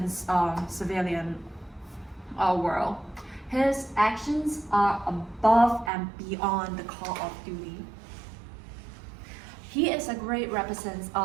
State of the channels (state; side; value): drops out; left; at 5.9 s